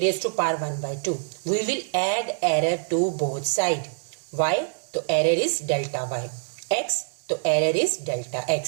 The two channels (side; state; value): left; silent; digital silence